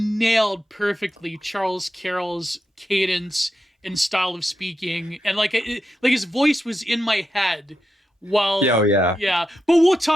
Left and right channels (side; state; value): both; normal; correlation 0.87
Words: perfectly Charles Carroll's cadence and style of speaking, and like his voice was in my head while Yeah, oh, yeah. yeah. But we'll